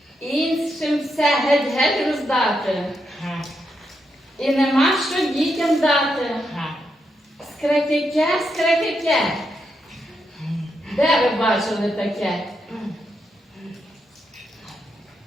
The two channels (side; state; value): both; normal; correlation 0.82